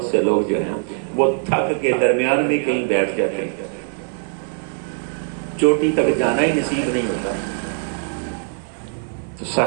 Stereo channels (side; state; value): left; silent; digital silence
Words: سے لوگ جو ہیں وہ تھک کے درمیان میں کہیں بیٹھ جاتے ہیں، چوٹی تک جانا ہی نصیب نہیں ہوتا۔ تو